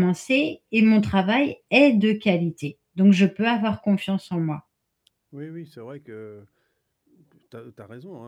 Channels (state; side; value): identical; both; correlation 1.00